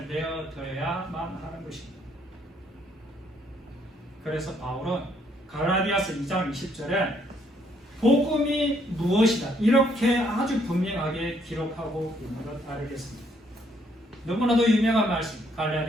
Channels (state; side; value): normal; both; correlation 0.69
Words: 내어드려야만 하는 것입니다. 그래서 바울은 갈라디아서 2장 20절에 복음이 무엇이다 이렇게 아주 분명하게 기록하고 있는 것 알겠습니다. 너무나도 유명한 말씀,